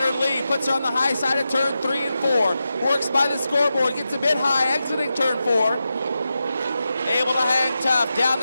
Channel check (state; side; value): inverted; both; correlation -0.90